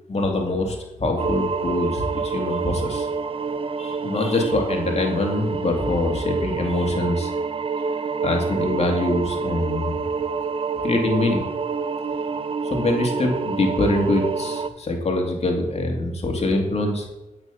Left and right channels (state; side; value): normal; both; correlation 0.61